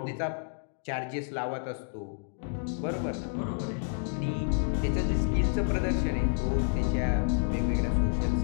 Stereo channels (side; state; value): right; silent; digital silence